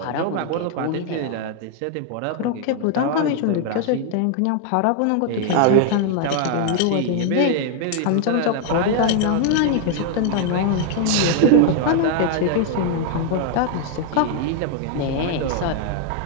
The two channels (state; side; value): different; both; correlation 0.00